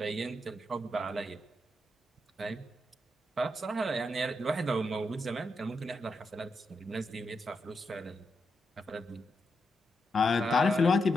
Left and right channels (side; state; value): both; normal; correlation 0.84